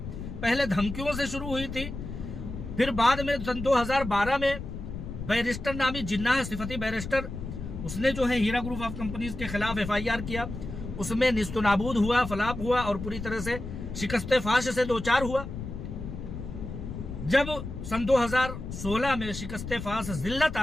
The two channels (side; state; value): left; noise; rumble, 8 dB below the sound